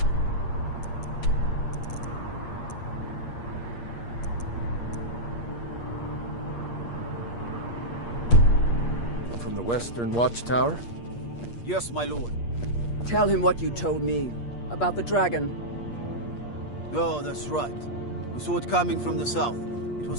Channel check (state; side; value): late; right; 8.5 ms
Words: From the Western Watchtower? Yes, my lord. Tell him what you told me about the dragon. Oh, that's right. We saw it coming from the south. It